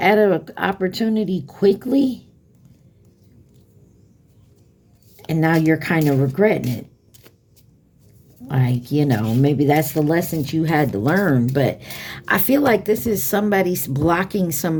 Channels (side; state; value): both; identical; correlation 1.00